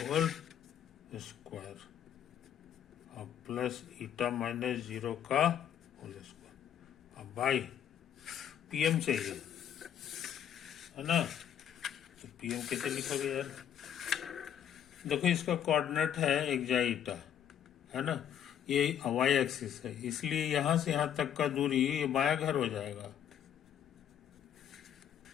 स्क्वायर और प्लस ईटा माइनस 0 का होल स्क्वायर। अब बाई PM चाहिए, है ना? तो PM कैसे लिखोगे यार? देखो इसका कोऑर्डिनेट है एक्जाई ईटा, है ना? ये y एक्सिस है, इसलिए यहां से यहां तक का दूरी ये बाया घर हो जाएगा।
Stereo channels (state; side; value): quieter; right; 9.3 dB